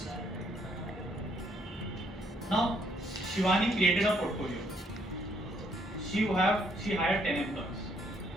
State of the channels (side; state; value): both; normal; correlation 0.69